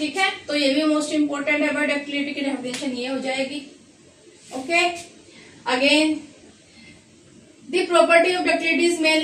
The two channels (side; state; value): both; identical; correlation 1.00